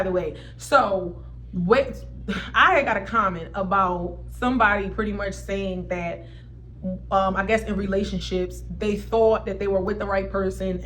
way. So wait, I got a comment about somebody pretty much saying that I guess in relationships, they thought that they were with the right person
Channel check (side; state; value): both; identical; correlation 1.00